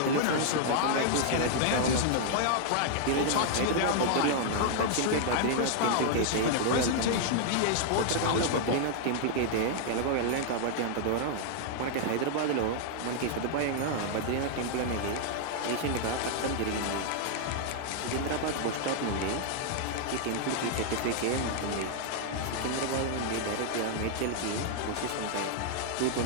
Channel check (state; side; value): different; both; correlation -0.01